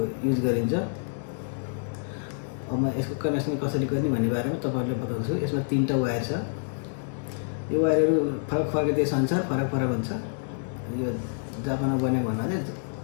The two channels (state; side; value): silent; right; digital silence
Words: युज गरिन्छ। अब म यसको कनेक्सन कसरी गर्ने भन्ने बारेमा तपाईहरुलाई बताउँछु। यसमा 3टा वायर छ। यो वायरहरू फरक फरक देश अनुसार फरक फरक हुन्छ। यो जापानमा बनेको भन्नाले